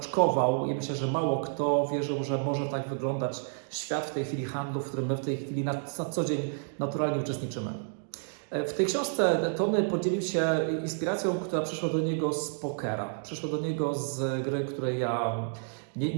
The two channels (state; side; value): silent; left; digital silence